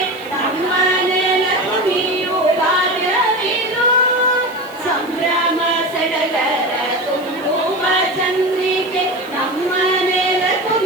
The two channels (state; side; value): noise; left; hiss, 23 dB below the sound